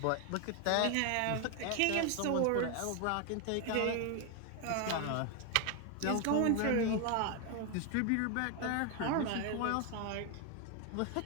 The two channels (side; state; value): both; different; correlation 0.01